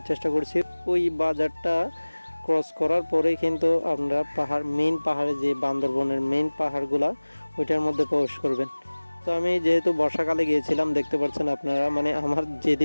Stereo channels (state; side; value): inverted; both; correlation -1.00